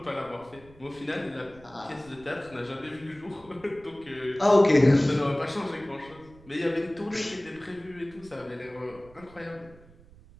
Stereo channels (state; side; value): noise; right; rumble, 23 dB below the sound